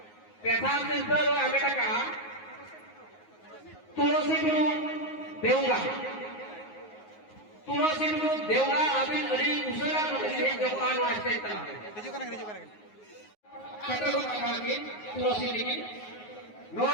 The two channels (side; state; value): right; late; 9.5 ms